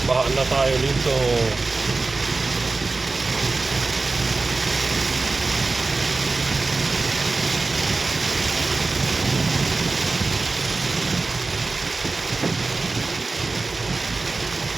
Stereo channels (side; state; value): left; quieter; 3.6 dB